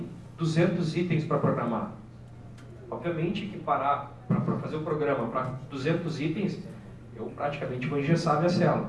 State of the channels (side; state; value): both; identical; correlation 1.00